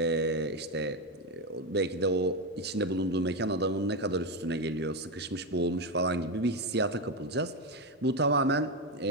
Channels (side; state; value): both; normal; correlation 0.10